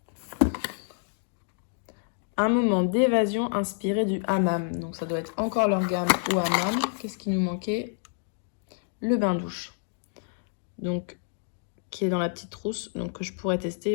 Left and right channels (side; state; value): right; silent; 59 dB below the other